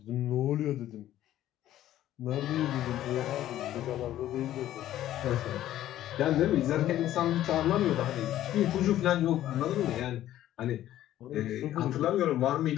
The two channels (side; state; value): right; quieter; 13.0 dB